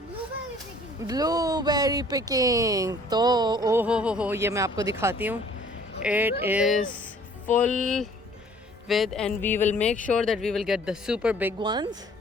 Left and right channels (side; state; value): both; normal; correlation 0.55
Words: Blueberry picking. तो ओहो हो, ये मैं आपको दिखाती हूँ। It is full with and we will make sure that we will get the super big ones